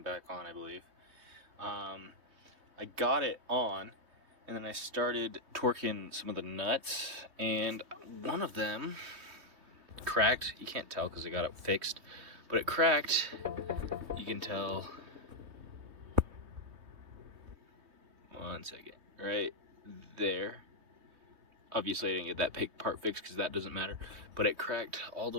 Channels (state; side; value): late; left; 3.2 ms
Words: on, I believe. I got it on, and then I started torquing some of the nuts, and one of them cracked. You can't tell because I got it fixed, but it cracked. You can tell. One second, right there. Obviously, I didn't get that part fixed because that doesn't matter, but it cracked all the